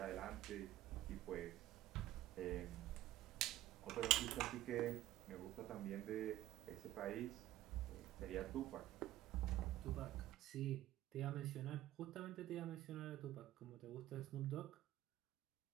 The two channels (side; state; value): left; quieter; 14.8 dB